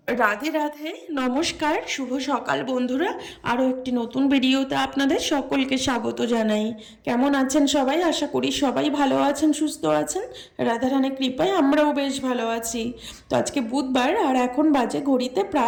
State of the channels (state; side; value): identical; both; correlation 1.00